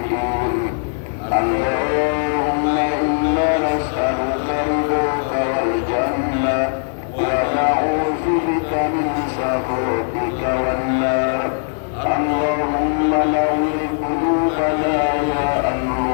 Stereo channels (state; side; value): silent; right; 65 dB below the other